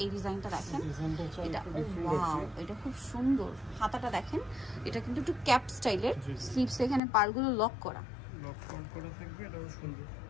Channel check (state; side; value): drops out; right; at 7.0 s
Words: এই ডিজাইনটা দেখেন, ডিজাইনটা হচ্ছে এটা একটু ডিফারেন্ট ওয়াও, আছে। এটা খুব সুন্দর। হাতাটা দেখেন, এটা কিন্তু একটু ক্যাপ স্টাইলের, স্লিভস এখানে পাড়গুলো লক করা, লক করা থাকবে, এটাও সুন্দর